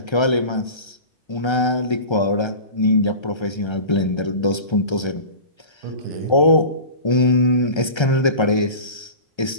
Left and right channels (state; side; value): late; right; 1.3 ms